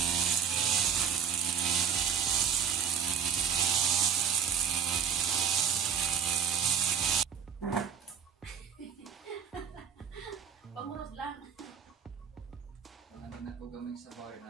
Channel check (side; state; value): left; quieter; 7.4 dB